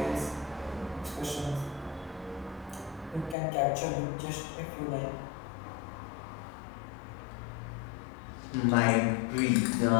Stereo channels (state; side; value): drops out; right; at 3.4 s